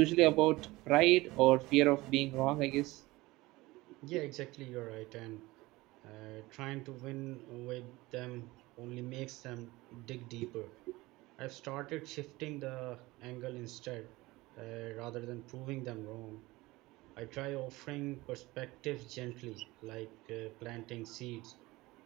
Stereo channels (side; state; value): left; quieter; 20.4 dB